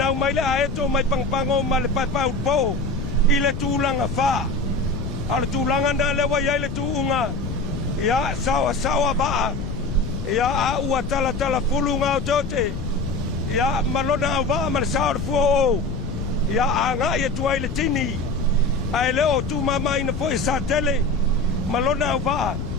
mai le aeto mai pangpango ma le paipau po I le tulanga fa a le tulanga na le wa ia le tuunga ia sawa ba ia a ua tala fulunga o tote ia malona ava ma le sao le fua o ia anga ia tuai le tini ai leo tu mama ina foi sa tele malona ava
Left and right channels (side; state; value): left; noise; rumble, 5 dB below the sound